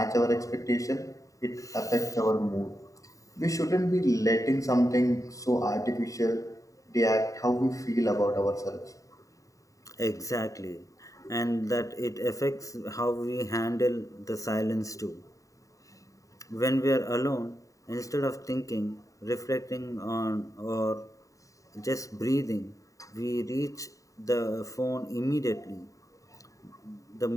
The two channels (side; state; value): right; late; 0.16 ms